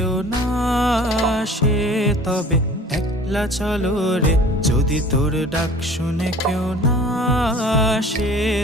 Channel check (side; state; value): both; normal; correlation 0.47